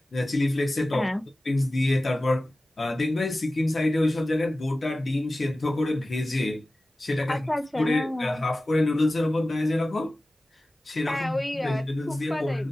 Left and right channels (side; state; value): both; normal; correlation 0.96